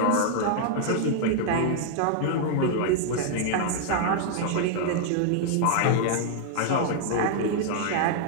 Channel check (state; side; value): different; both; correlation 0.00